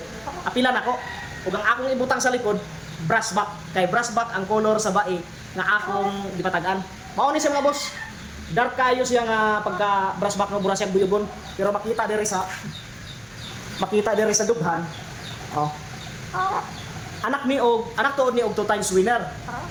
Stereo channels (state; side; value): identical; both; correlation 1.00